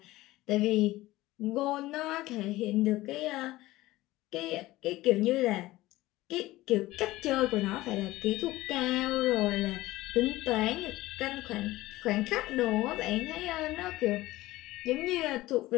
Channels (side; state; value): right; quieter; 17.7 dB